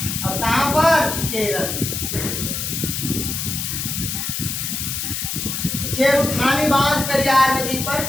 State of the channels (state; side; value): noise; left; hiss, 3 dB below the sound